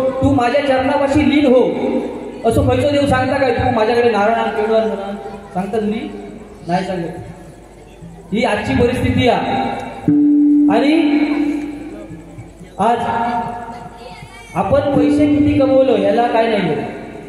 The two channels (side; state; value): both; identical; correlation 1.00